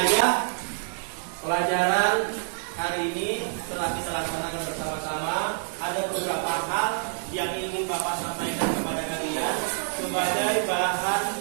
pelajaran hari ini telah kita laksanakan bersama-sama. Ada beberapa hal yang ingin Bapak sampaikan kepada kalian sebagai bahan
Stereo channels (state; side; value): silent; left; digital silence